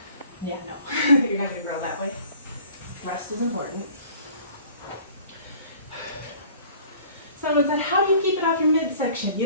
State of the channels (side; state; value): both; inverted; correlation -0.50